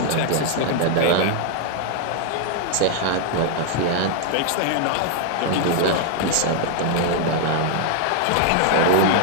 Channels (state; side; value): different; both; correlation 0.00